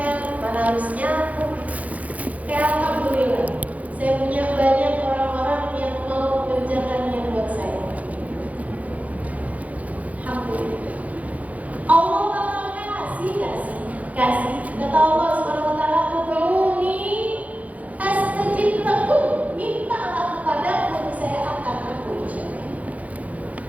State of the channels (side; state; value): left; late; 0.071 ms